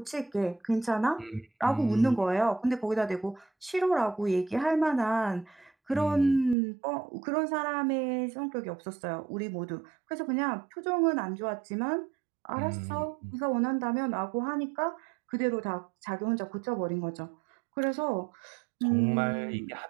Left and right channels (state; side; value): drops out; left; at 6.6 s